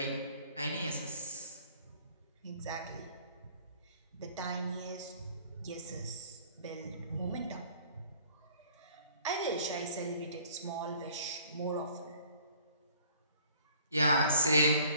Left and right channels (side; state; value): both; inverted; correlation -0.55